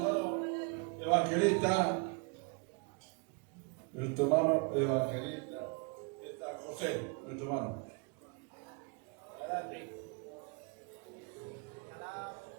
evangelista, nuestro hermano evangelista, está José, nuestro hermano. Adelante.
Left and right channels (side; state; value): left; quieter; 34.3 dB